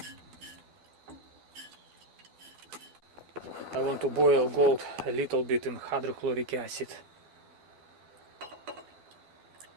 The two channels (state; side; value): late; left; 12 ms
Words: I want to boil gold a little bit in hydrochloric acid.